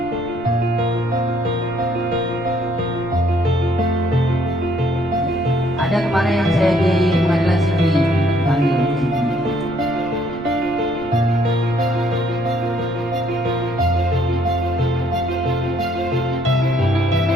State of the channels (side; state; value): right; noise; rumble, 18 dB below the sound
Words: Ada kemarin yang saya di pengadilan sipil panggil